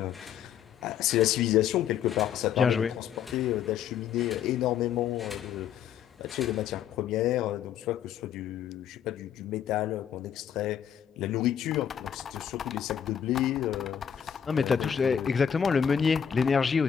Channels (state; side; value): quieter; right; 8.6 dB